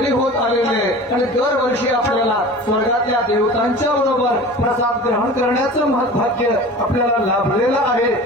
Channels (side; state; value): both; normal; correlation 0.38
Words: होत आलेले आणि दरवर्षी आपल्याला स्वर्गातल्या देवतांच्या बरोबर प्रसाद ग्रहण करण्याचं भाग्य आपल्याला लाभलेलं आहे.